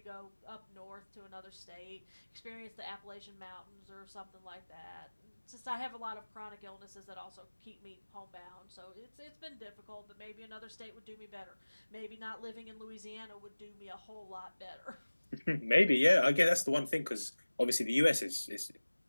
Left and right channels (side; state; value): both; inverted; correlation -1.00